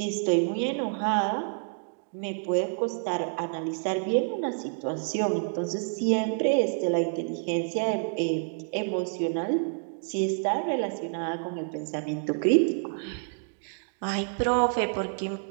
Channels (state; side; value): silent; left; digital silence